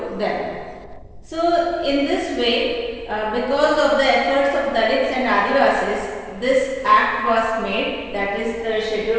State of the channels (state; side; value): identical; both; correlation 1.00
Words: them. So in this way, because of the efforts of Dalits and Adivasis, this act was made, that is the